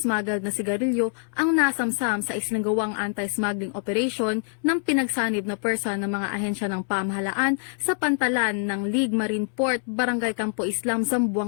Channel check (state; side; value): silent; right; 59 dB below the other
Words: na sigarilyo ang nasamsam sa isinagawang anti-smuggling operation ng pinagsanib na pwersa ng mga ahensya ng pamahalaan sa pantalan ng League Marine Port, Barangay Campo Islam,